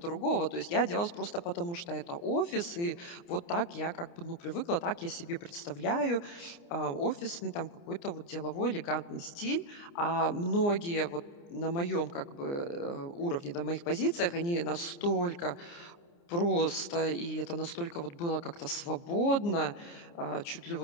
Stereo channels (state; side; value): late; right; 29 ms